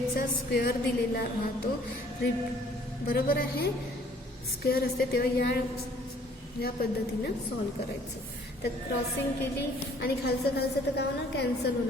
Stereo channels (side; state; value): both; normal; correlation 0.58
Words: स्क्वेअर दिलेला राहतो. बरोबर आहे, स्क्वेअर असते तेव्हा या पद्धतीनं सॉल्व करायचं. तर क्रॉसिंग केली आणि खालचं तर काय होणार, कॅन्सल